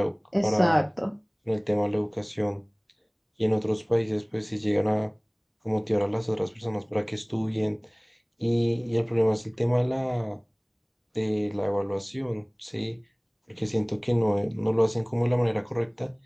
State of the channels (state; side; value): identical; both; correlation 1.00